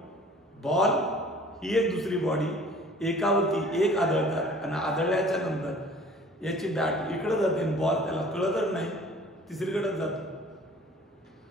बॉल ही एक दुसरी बॉडी, एकावरती एक आदळतात आणि आदळल्याच्या नंतर याची बॅट इकडे जाते, बॉल त्याला कळतच नाही, तिसरीकडेच जातो.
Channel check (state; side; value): normal; both; correlation 0.49